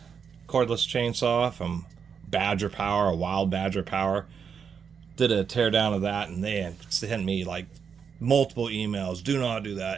cordless chainsaw from Badger Power, a Wild Badger Power. Did a teardown of that, and they sent me like multiple emails. Do not do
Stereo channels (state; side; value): quieter; left; 6.7 dB